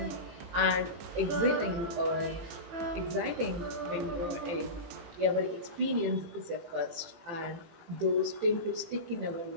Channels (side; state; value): left; late; 18 ms